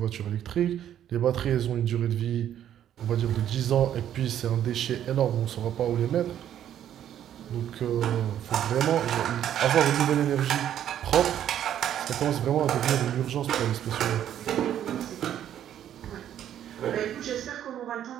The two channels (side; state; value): left; quieter; 10.6 dB